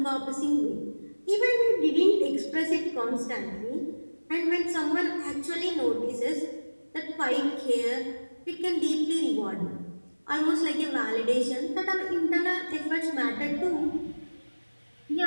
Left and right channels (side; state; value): both; inverted; correlation -1.00